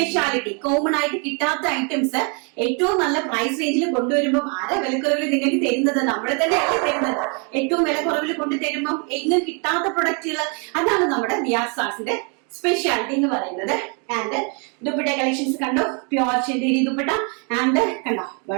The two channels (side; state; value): left; quieter; 36.2 dB